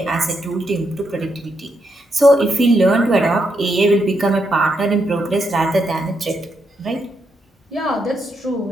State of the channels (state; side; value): normal; both; correlation 0.80